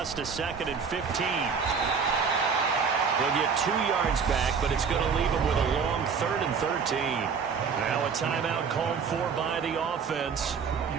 to 2nd and 15. He'll get 2 yards back, but it's going to leave him with a long 3rd and 13. Now a timeout called for by the offense.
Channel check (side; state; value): left; quieter; 6.0 dB